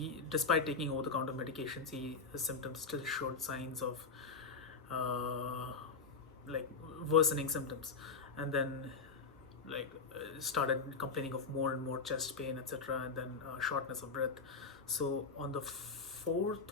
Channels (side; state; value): right; quieter; 4.7 dB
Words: despite taking over-the-counter medications, his symptoms still showed signs of like worsening symptoms, and then started complaining of more and more chest pain, etc., and then shortness of breath. So on the